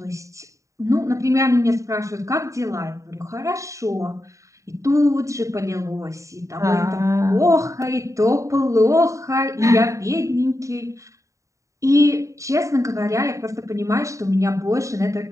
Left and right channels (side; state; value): left; late; 0.15 ms